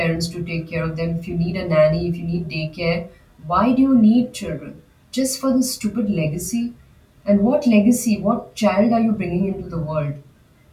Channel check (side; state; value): both; identical; correlation 1.00